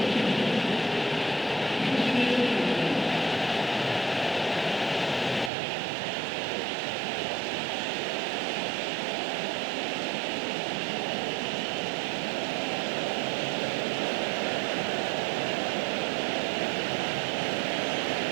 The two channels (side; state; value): left; drops out; at 5.5 s